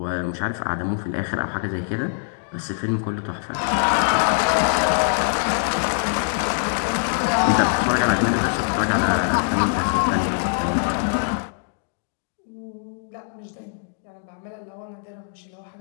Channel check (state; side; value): silent; right; digital silence